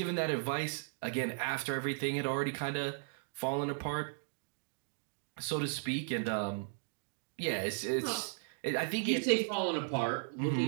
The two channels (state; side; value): silent; left; digital silence